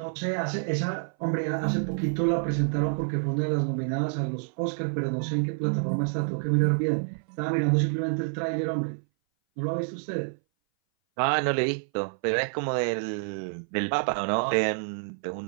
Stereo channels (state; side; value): silent; left; 58 dB below the other